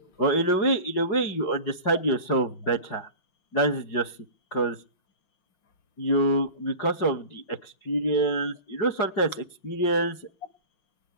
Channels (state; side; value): late; right; 5.4 ms